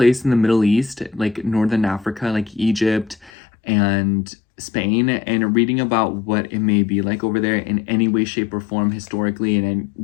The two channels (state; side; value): drops out; right; at 3.3 s